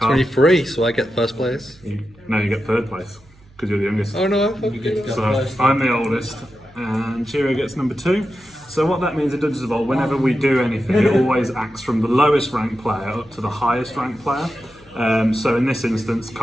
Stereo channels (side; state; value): right; noise; hum, 27 dB below the sound